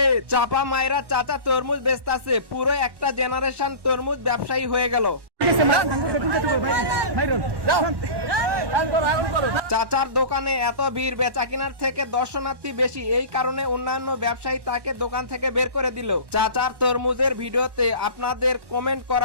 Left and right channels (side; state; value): left; late; 1.1 ms